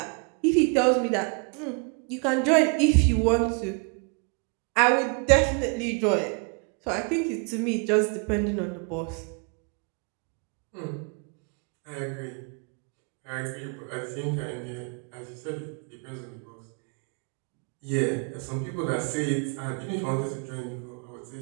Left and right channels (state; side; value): quieter; left; 35.7 dB